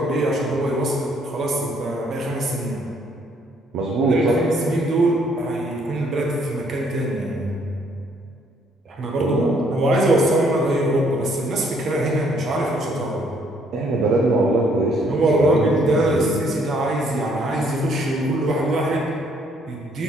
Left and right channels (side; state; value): both; normal; correlation 0.66